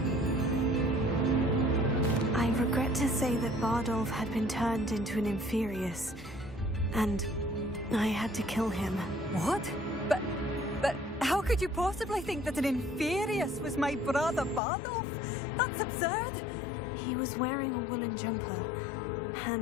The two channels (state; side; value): drops out; right; at 14.6 s